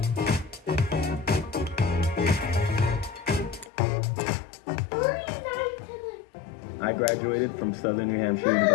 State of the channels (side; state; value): right; drops out; at 3.7 s